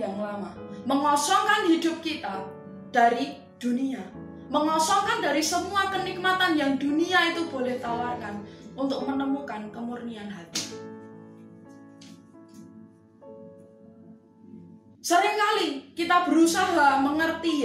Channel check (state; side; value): identical; both; correlation 1.00